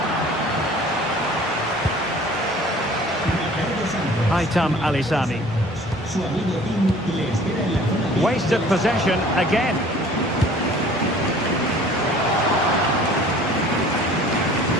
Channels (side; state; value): both; normal; correlation 0.49